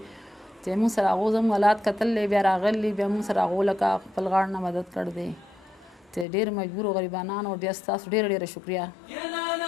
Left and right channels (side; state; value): right; drops out; at 6.2 s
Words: چې موږ سره هغو زموږ حالات کتللی، بیا راغلي، بیا موږ سره هغو لکه خپل غاړ نه مدد کړ دی. چې ډېر مجبورو غریبانانو بیا ستاسو ډېره شکریه.